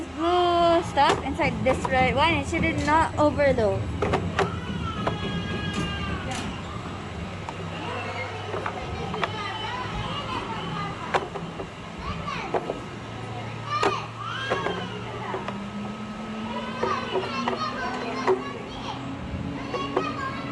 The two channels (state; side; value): identical; both; correlation 1.00